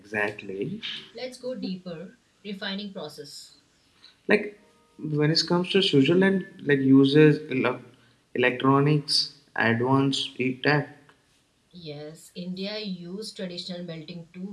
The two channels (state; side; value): identical; both; correlation 1.00